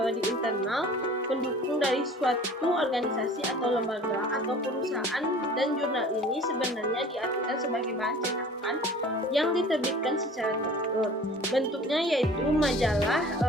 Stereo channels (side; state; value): both; normal; correlation 0.46